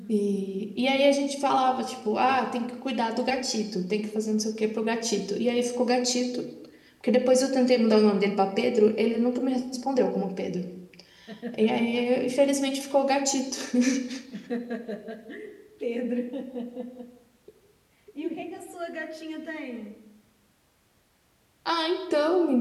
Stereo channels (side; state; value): both; identical; correlation 1.00